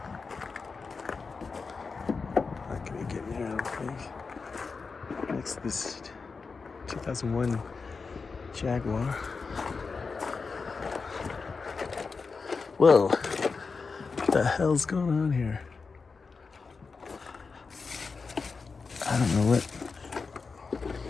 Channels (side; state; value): right; quieter; 4.7 dB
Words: Not gonna get in here, I don't think. Next to this 2001 Jaguar. Whoa, what the hell's going on here? I don't know